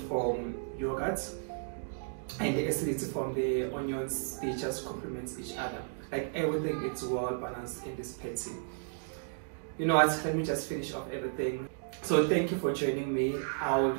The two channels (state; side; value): silent; left; digital silence